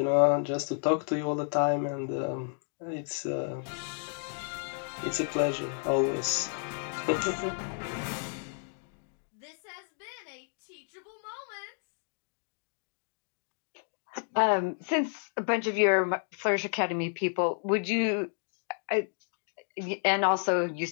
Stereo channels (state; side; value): silent; right; 57 dB below the other